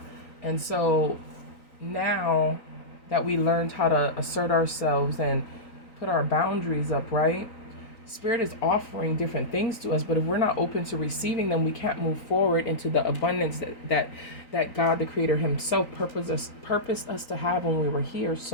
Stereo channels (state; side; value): late; right; 3.9 ms